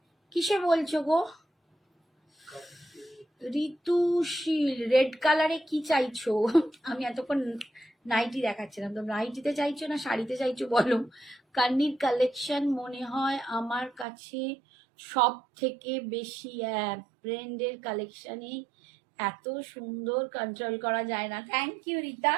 কিসে বলছো গো ঋতুশীল? রেড কালারে কি চাইছো? আমি এতক্ষণ নাইটি দেখাচ্ছিলাম, তো নাইটিতে চাইছো না শাড়িতে চাইছো বলো। কান্নির কালেকশন মনে হয় আমার কাছে সব থেকে বেশি, ব্র্যান্ডের কালেকশনে এত সুন্দর, কন্ট্রোল করা যায় না। Thank you Rita,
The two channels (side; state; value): left; drops out; at 14.1 s